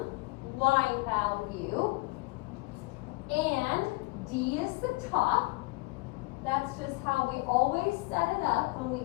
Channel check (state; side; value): quieter; right; 24.5 dB